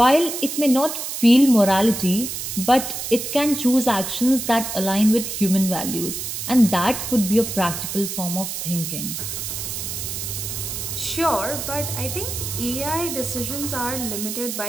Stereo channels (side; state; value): right; noise; hiss, 5 dB below the sound